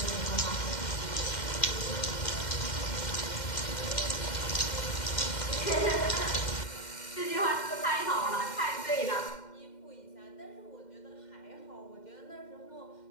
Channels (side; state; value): right; late; 2.1 ms